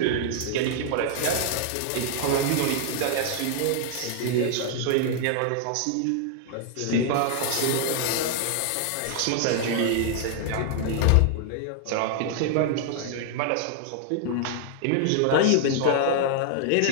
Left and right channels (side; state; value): both; different; correlation 0.00